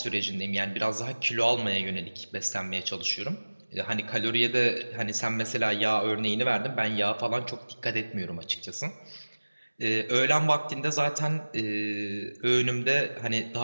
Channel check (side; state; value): both; inverted; correlation -1.00